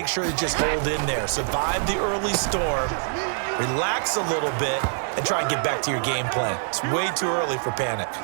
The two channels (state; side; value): silent; left; 62 dB below the other